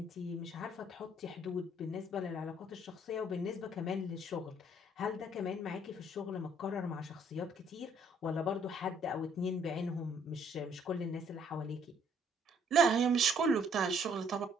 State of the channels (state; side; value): normal; both; correlation 0.63